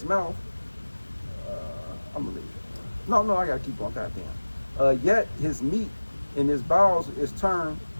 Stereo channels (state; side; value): inverted; both; correlation -1.00